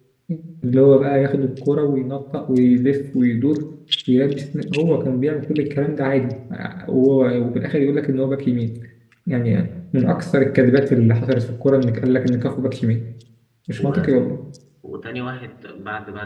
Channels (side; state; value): both; identical; correlation 1.00